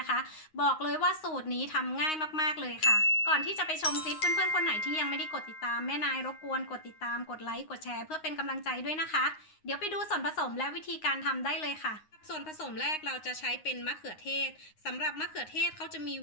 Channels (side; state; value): right; late; 9.6 ms